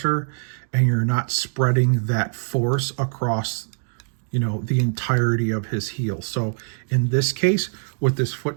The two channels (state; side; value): silent; left; digital silence